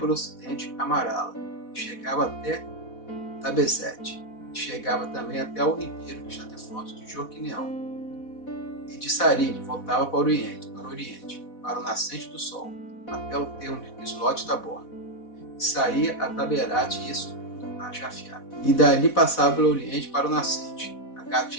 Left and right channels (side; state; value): right; late; 4.1 ms